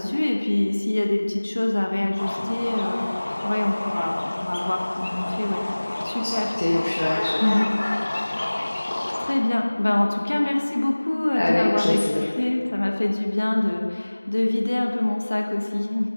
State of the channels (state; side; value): inverted; both; correlation -1.00